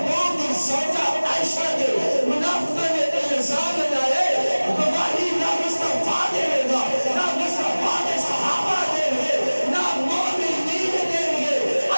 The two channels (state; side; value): inverted; both; correlation -1.00